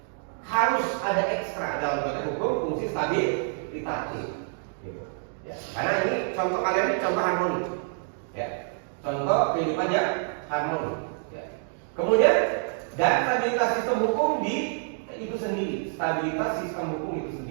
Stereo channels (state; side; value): silent; left; 57 dB below the other